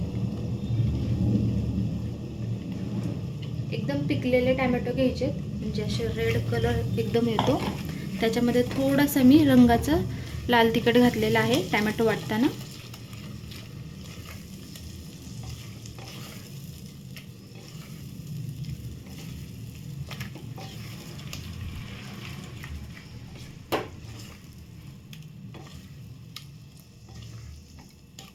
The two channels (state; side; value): identical; both; correlation 1.00